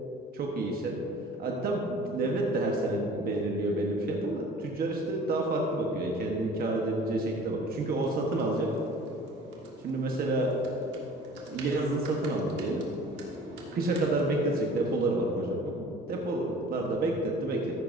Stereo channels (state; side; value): normal; both; correlation 0.47